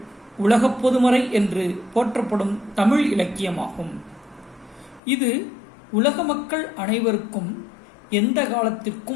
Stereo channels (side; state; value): right; drops out; at 5.0 s